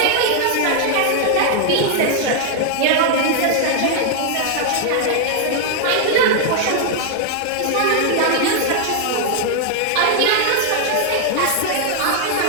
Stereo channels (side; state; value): both; different; correlation 0.00